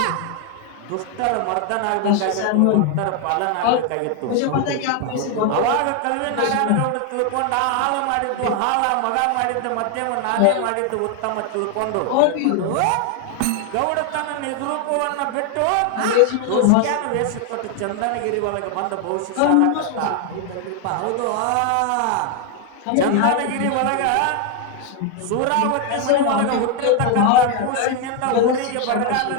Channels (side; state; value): both; different; correlation 0.01